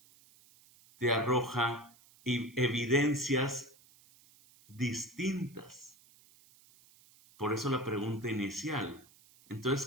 te arroja evidencias distintas. Por eso la pregunta inicial.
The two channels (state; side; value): noise; right; hiss, 27 dB below the sound